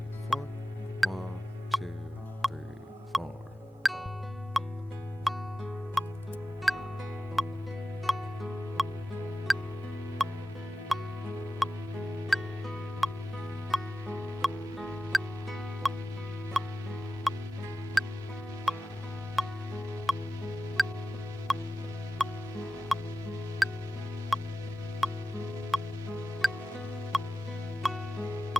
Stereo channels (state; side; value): normal; both; correlation 0.94